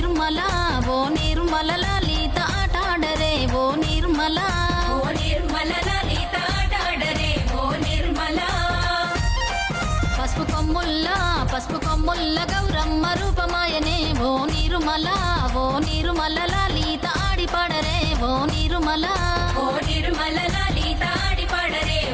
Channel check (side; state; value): both; identical; correlation 1.00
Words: లలిత ఆటాడరే ఓ నిర్మల. ఓ నిర్మల లలిత ఆటాడరే ఓ నిర్మల. పసుపు కొమ్ముల్ల గౌరమ్మ రూపమాయనే ఓ నిర్మల లలిత ఆడిపాడరే ఓ నిర్మల. ఓ నిర్మల లలిత ఆడిపాడరే